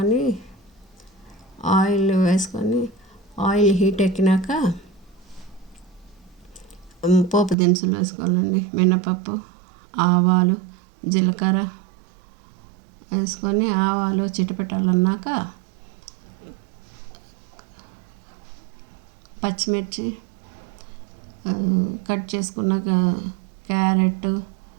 ఆయిల్ వేసుకొని ఆయిల్ హీట్ ఎక్కినాక పోపు దినుసులు వేసుకోవాలండి. మినపప్పు, ఆవాలు, జీలకర్ర వేసుకొని ఆవాలు చిటపటాలన్నాక పచ్చిమిర్చి, కట్ చేసుకున్నాక క్యారెట్,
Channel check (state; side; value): drops out; left; at 7.6 s